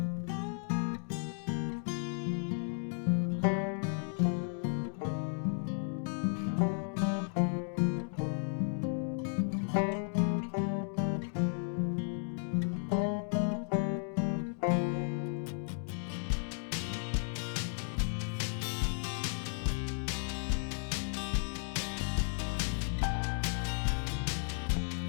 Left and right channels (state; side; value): silent; right; 55 dB below the other